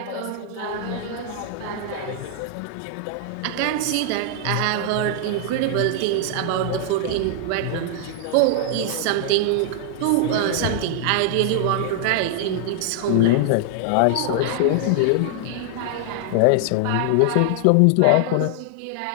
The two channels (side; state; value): both; different; correlation -0.01